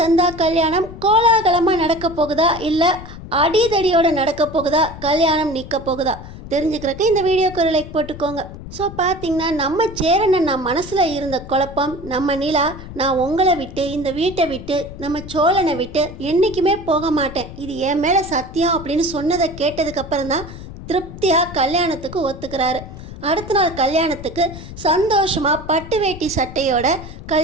கல்யாணம் கோலாகலமாக நடக்க போகுதா, இல்லை அடிதடியோட நடக்க போகுதா, கல்யாணம் நிற்க போகுதா தெரிஞ்சுக்கிறதுக்கு இந்த வீடியோக்கு ஒரு லைக் போட்டுக்கோங்க. ஸோ பார்த்தீங்கன்னா நம்ம சேரனை நான் மனசில் இருந்த குழப்பம், நம்ம நிலா நான் உங்களை விட்டு இந்த வீட்டை விட்டு நம்ம சோழனை விட்டு என்றைக்குமே போக மாட்டேன், இது என் மேலே சத்தியம் அப்படின்னு சொன்னதை கேட்டதுக்கப்புறம் தான் திருப்தியாக கல்யாணத்துக்கு ஒத்துக்கிறாரு. அடுத்த நாள் கல்யாணத்துக்கு சந்தோஷமாக பட்டு வேட்டி சட்டையோட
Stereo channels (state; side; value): noise; left; rumble, 13 dB below the sound